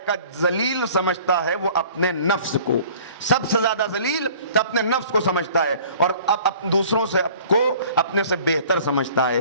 کہ ذلیل سمجھتا ہے وہ اپنے نفس کو، سب سے زیادہ ذلیل تو اپنے نفس کو سمجھتا ہے، اور اب دوسروں سے کو اپنے سے بہتر سمجھتا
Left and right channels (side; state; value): both; inverted; correlation -0.50